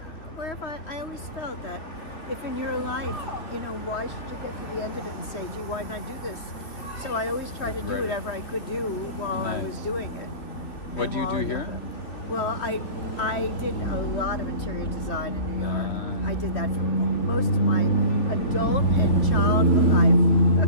wherever I always felt that if in your life, why should you get to the end of it and say, gee, why didn't I do this? So I always tried to do whatever I could do while I was doing it. What do you do here? Well, I did a lot of interior design in New York. I did that for most of my adult and childhood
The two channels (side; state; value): right; late; 3.1 ms